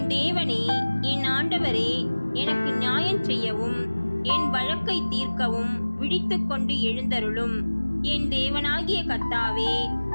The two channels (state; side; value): inverted; both; correlation -1.00